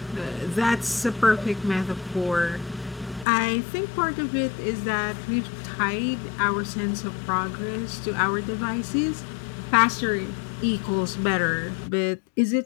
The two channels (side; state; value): right; drops out; at 3.2 s